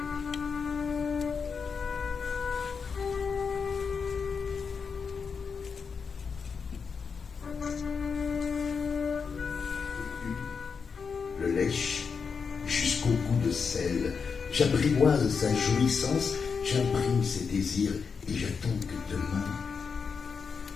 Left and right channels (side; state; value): right; quieter; 5.7 dB